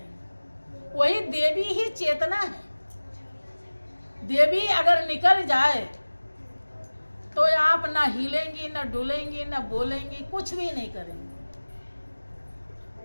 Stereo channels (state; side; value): inverted; both; correlation -1.00